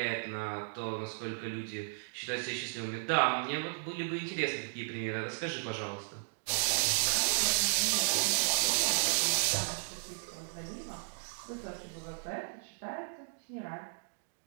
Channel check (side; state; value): left; silent; digital silence